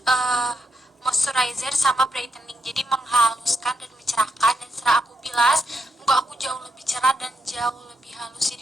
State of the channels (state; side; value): normal; both; correlation 0.82